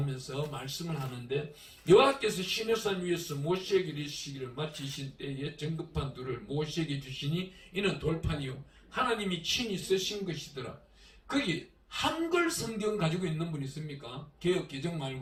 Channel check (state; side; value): identical; both; correlation 1.00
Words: 말씀을 하는데 여호와께서 시내산 위에서 모세에게 이르시기를 마치신 때에 정급판 둘을 모세에게 주시니 이는 돌판이요 하나님이 친히 쓰신 것이더라. 거기 한글 성경 가지고 있는 분 있습니까? 개역 개정